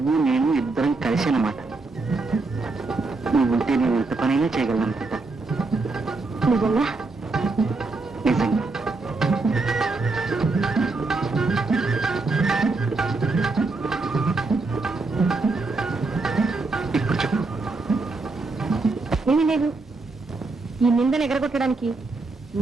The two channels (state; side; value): quieter; left; 3.6 dB